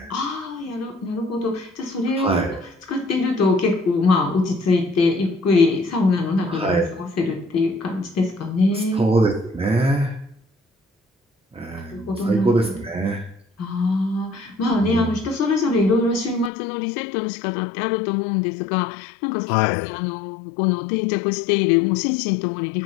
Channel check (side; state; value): right; drops out; at 16.5 s